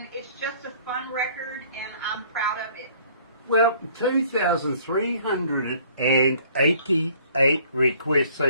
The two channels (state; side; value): inverted; both; correlation -0.56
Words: it's just a fun record, and I'm proud of it. Well, 2,388 requests